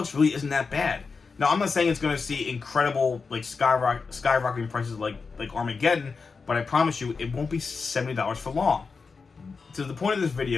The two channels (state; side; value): quieter; right; 4.8 dB